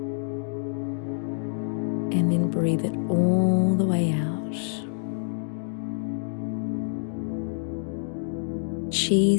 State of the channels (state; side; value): silent; right; digital silence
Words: and then breathe it all the way out.